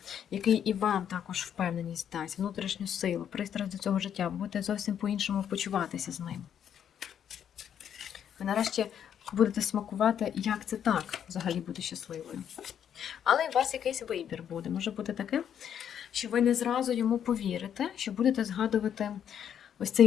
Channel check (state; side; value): quieter; right; 9.0 dB